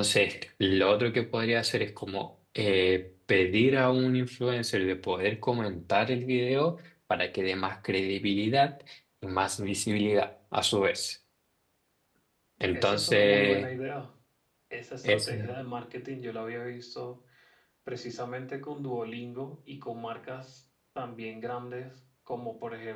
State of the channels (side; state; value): both; identical; correlation 1.00